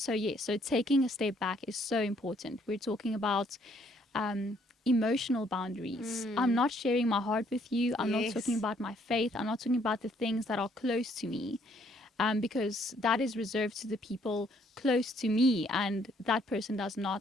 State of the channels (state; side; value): normal; both; correlation 0.66